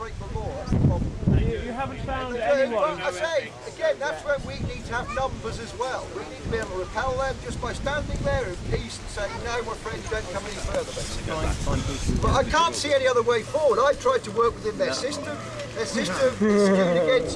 the law, that's the problem. You haven't found anyone. I say, again, that's where we need to have numbers as well. We need to be able to repel them just by standing there in peace and saying, no, my friend, don't come any further, basically. But I can't see any other way forward. I've tried to work within their system. Their system is skewed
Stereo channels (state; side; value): identical; both; correlation 1.00